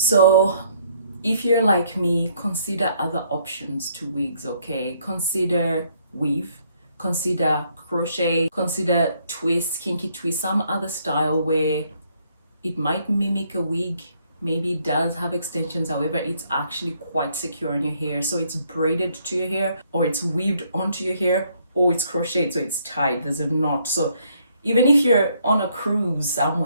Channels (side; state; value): both; inverted; correlation -0.68